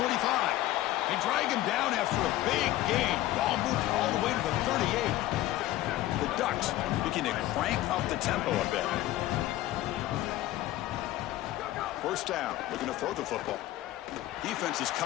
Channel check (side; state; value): right; quieter; 15.4 dB